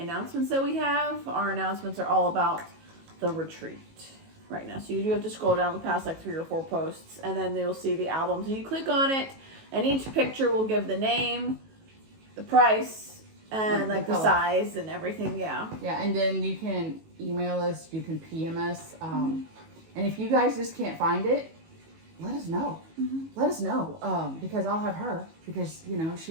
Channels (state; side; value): late; left; 18 ms